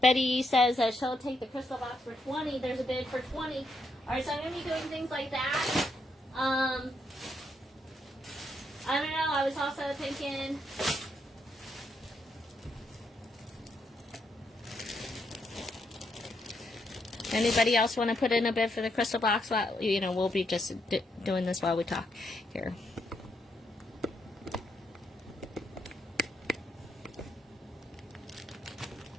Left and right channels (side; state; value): both; normal; correlation 0.78